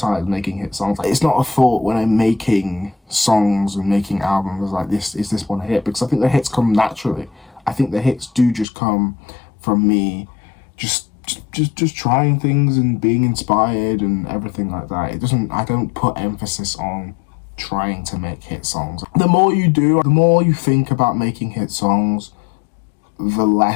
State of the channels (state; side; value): drops out; right; at 8.7 s